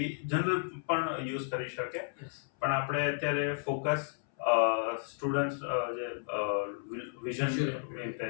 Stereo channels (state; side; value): silent; right; 56 dB below the other